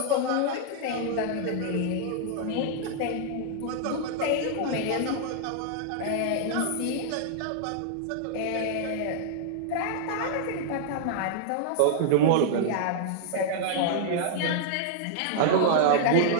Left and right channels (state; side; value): different; both; correlation -0.01